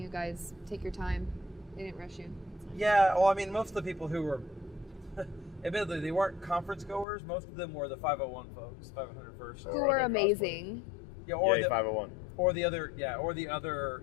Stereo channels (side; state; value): right; drops out; at 7.1 s